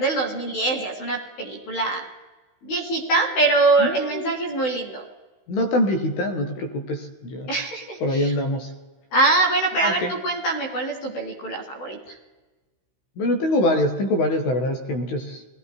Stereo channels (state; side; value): late; right; 16 ms